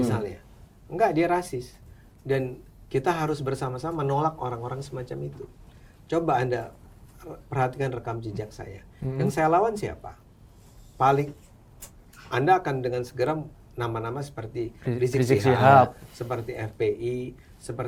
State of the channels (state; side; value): identical; both; correlation 1.00